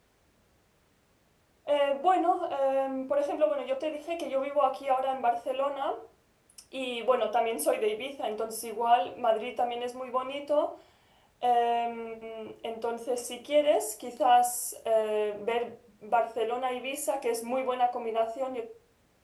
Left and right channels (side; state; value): both; identical; correlation 1.00